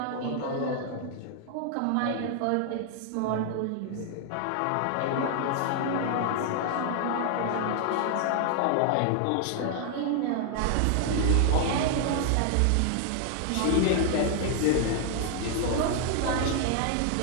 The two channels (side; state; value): both; different; correlation 0.00